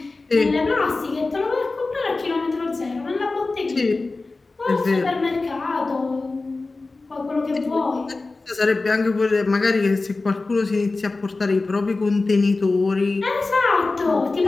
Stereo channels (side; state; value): right; quieter; 3.5 dB